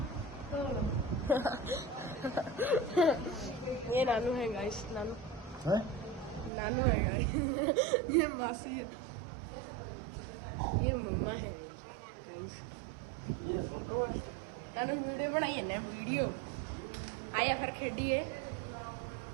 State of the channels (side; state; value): left; drops out; at 6.5 s